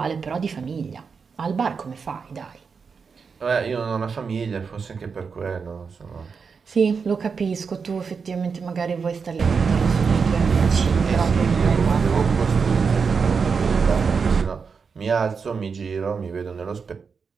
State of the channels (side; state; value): left; quieter; 5.5 dB